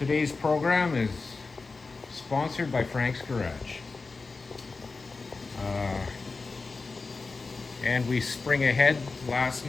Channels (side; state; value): right; quieter; 4.0 dB